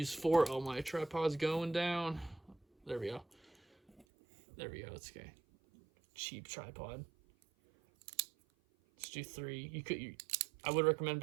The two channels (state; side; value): drops out; left; at 4.0 s